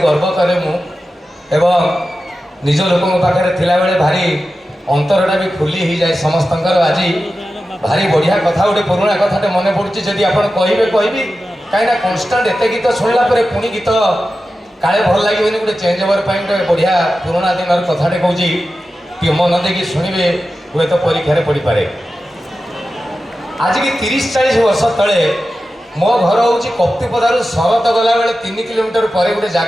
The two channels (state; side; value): normal; both; correlation 0.93